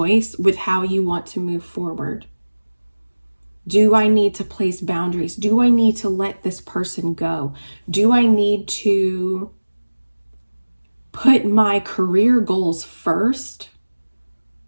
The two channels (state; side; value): inverted; both; correlation -1.00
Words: with how you want to move forward. Do I need to place boundaries? Do I need to let this person go? Do I need to put my career goals first